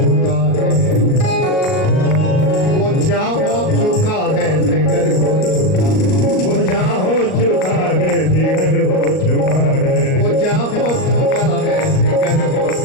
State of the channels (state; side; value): late; right; 38 ms